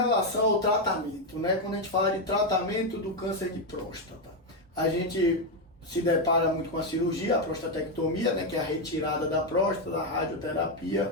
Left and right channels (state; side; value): normal; both; correlation 0.05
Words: ao tratamento, né? Quando a gente fala de tratamento do câncer de próstata, a gente se depara muito com a cirurgia, a prostatectomia, né? Que é a retirada da próstata, a